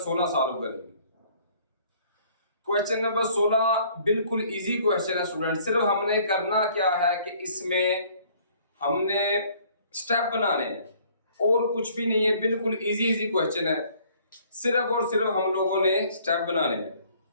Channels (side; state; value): both; inverted; correlation -0.58